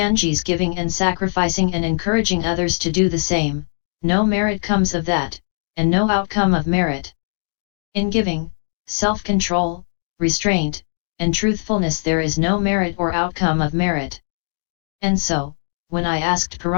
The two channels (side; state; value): right; silent; digital silence